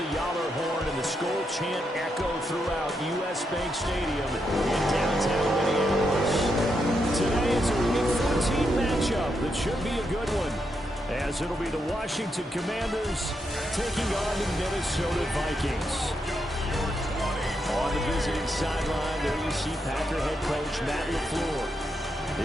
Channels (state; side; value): normal; both; correlation 0.82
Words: Yowler horn and the Skol chant echo throughout U.S. Bank Stadium in downtown Minneapolis. Today is a Week 14 matchup that should be a good one, as it'll be the Washington Commanders taking on the Minnesota Vikings. On the visiting sideline, there you see Packer head coach Matt LaFleur.